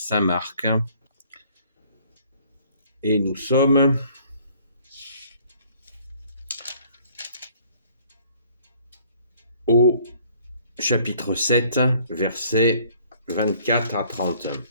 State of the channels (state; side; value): inverted; both; correlation -0.58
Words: Marc. Et nous sommes au chapitre 7, versets 24 à 30.